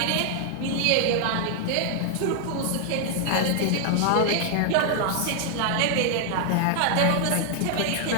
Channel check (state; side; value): different; both; correlation 0.00